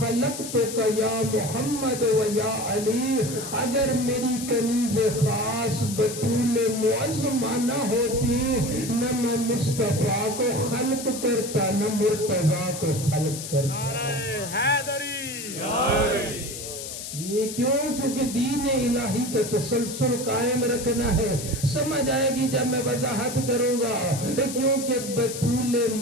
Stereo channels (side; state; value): left; noise; hiss, 8 dB below the sound